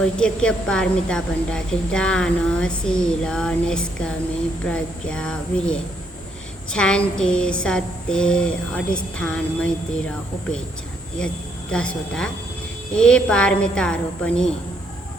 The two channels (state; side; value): normal; both; correlation 0.73